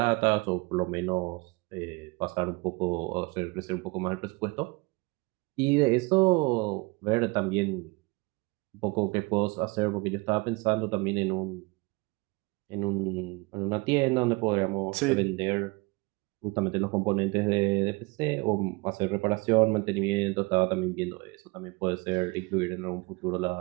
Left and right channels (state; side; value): quieter; left; 25.7 dB